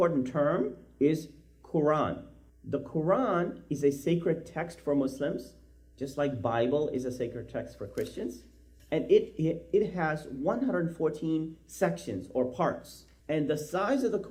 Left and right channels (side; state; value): both; identical; correlation 1.00